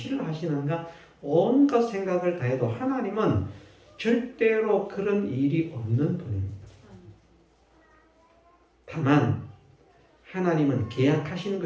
하시는가, 온갖 생각을 다해도 하나님은 절대로 그런 일이 없는 분입니다. 다만 하나님은 계약하신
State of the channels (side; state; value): both; identical; correlation 1.00